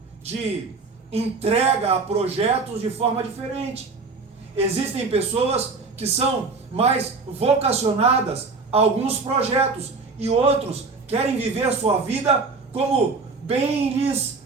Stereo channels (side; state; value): left; quieter; 4.2 dB